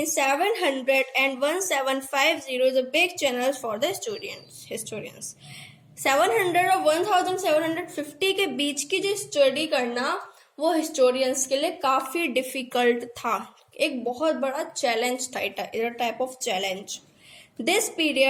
700 and 1750 is a big challenge for the historians. 700 और 1750 के बीच की जो स्टडी करना वो हिस्टोरियंस के लिए काफी डिफिकल्ट था, एक बहुत बड़ा चैलेंज था, it type of challenge. This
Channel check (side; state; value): both; identical; correlation 1.00